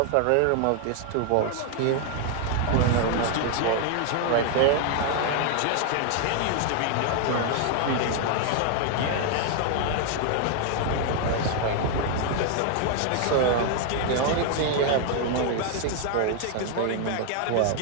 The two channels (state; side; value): different; both; correlation 0.00